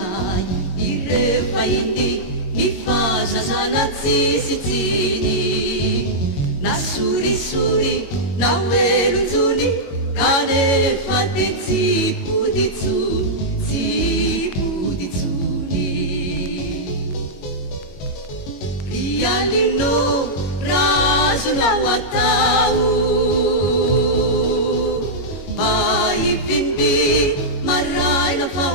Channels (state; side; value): late; right; 22 ms